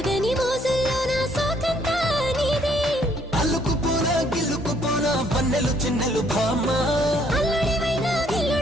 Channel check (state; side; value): normal; both; correlation 0.66